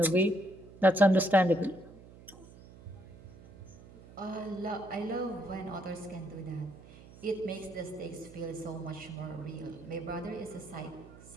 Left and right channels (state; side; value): noise; right; hum, 19 dB below the sound